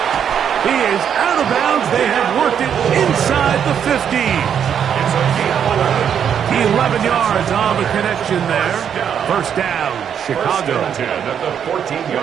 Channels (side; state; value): left; quieter; 8.3 dB